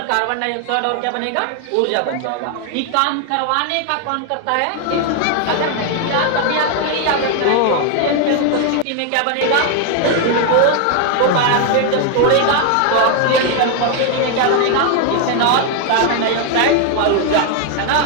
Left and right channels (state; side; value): different; both; correlation 0.00